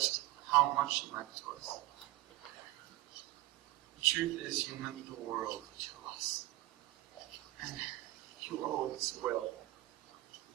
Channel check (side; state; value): left; quieter; 18.0 dB